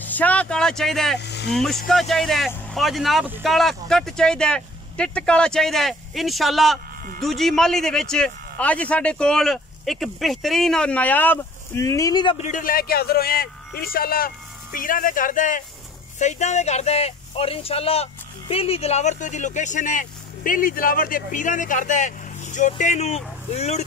शाह काला चाहिए, मुश्का चाहिए और जनाब काला कट चाहिए, टिट काला चाहिए। इंशाल्लाह दूजी माली दे विच अज साडे कोल एक बेहतरीन और नायाब नीली दा ब्रीडर लैके हाजिर होए हैं। इंशाल्लाह पीरां दे घर दा है, सईदां दे घर दा है और इंशाल्लाह बेली दिलावर तो दी लोकेशन है। बेली दिलावर दे पीरां दे घर दा है। जोटे नूं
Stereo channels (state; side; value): normal; both; correlation 0.51